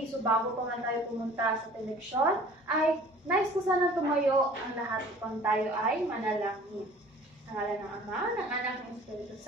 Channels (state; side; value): normal; both; correlation 0.49